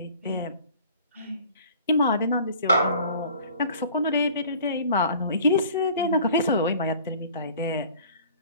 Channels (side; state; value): both; inverted; correlation -0.48